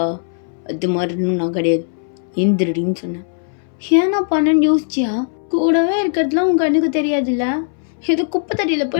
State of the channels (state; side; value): silent; right; 64 dB below the other